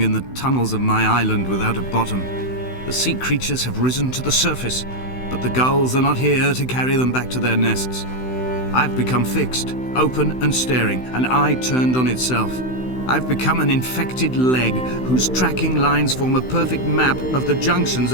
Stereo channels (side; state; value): right; late; 16 ms